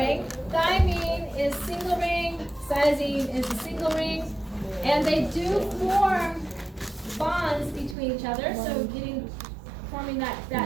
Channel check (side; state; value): left; drops out; at 8.0 s